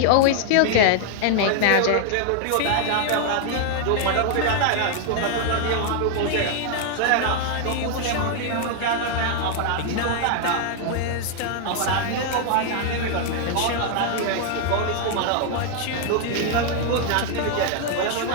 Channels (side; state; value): both; different; correlation 0.00